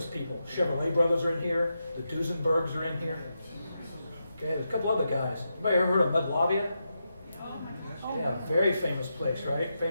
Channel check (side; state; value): both; inverted; correlation -0.86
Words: people. Chevrolet brothers are in here. The Duesenbergs are in here. Okay, there's a couple other guys. Anybody ever heard of Mudlavia? Yeah, very famous place, right?